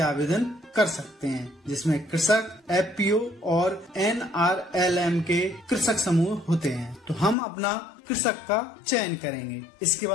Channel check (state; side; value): drops out; right; at 7.4 s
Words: कर सकते हैं, जिसमें कृषक, एफपीओ और NRLM के कृषक समूह होते हैं। तो हम अपना कृषक का चयन करेंगे। इसके